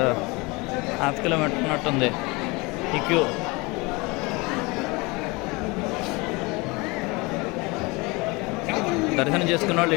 1/2 కిలోమీటర్ ఉన్నట్టుంది ఈ క్యూ. దర్శనం చేసుకున్న వాళ్ళు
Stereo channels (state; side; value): quieter; right; 25.5 dB